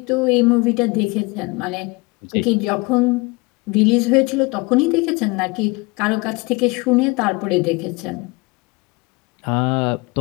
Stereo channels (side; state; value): right; quieter; 25.6 dB